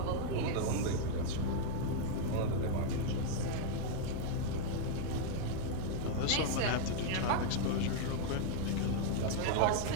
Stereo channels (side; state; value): both; different; correlation 0.00